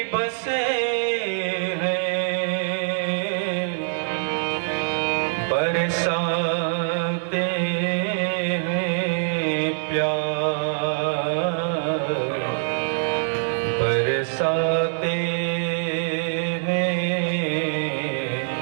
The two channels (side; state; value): left; silent; digital silence